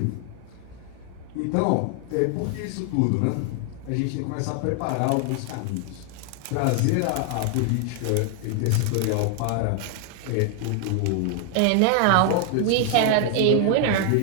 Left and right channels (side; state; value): both; different; correlation 0.00